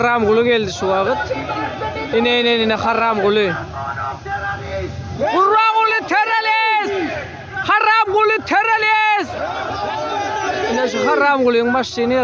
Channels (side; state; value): both; identical; correlation 1.00